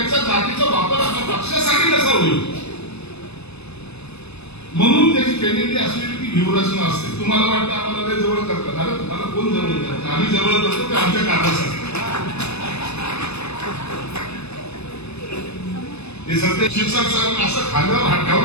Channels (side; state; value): right; late; 0.80 ms